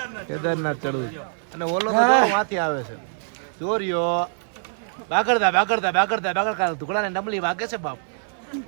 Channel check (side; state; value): left; silent; 59 dB below the other